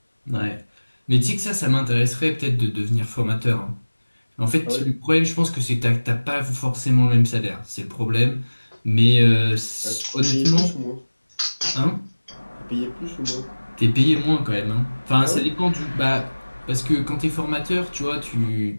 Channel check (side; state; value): both; inverted; correlation -1.00